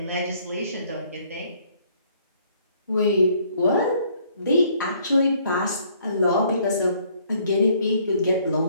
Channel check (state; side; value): inverted; both; correlation -0.63